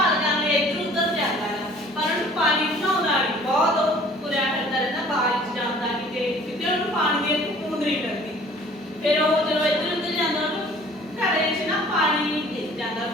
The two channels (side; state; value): both; normal; correlation 0.52